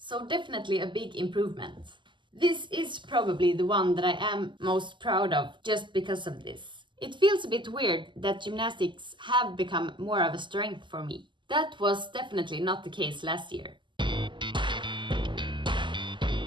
definitely a big improvement. This is probably the one that I am most proud of just because of this. It feels a bit weird that gymnastics have become more of a strength for me. That was definitely not the case last year.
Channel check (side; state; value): left; late; 0.23 ms